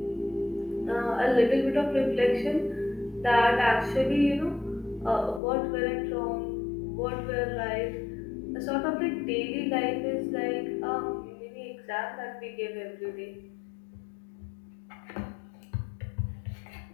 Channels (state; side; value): drops out; right; at 5.4 s